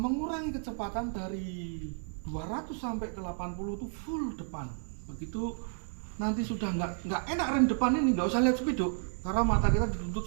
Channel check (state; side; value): silent; left; 56 dB below the other